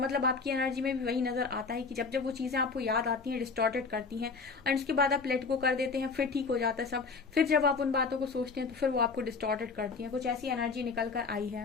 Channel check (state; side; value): quieter; right; 4.7 dB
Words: आपकी एनर्जी में भी वही नजर आता है कि जब वो चीजें आपको याद आती हैं, डिस्टॉर्टेड करती हैं, और उसके बाद आप लेट गो कर देते हैं, फिर ठीक हो जाता है सब। फिर जब आप उन बातों को सोचते हैं तो फिर वो आपको डिस्टॉर्टेड करती हैं। कुछ ऐसी एनर्जी निकल कर आई